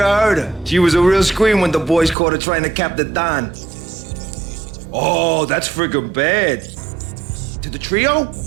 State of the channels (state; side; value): drops out; left; at 2.1 s